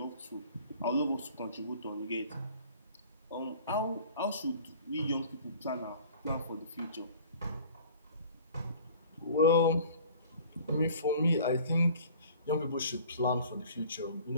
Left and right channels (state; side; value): inverted; both; correlation -0.47